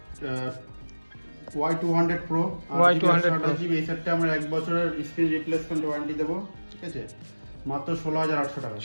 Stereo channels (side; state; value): both; inverted; correlation -1.00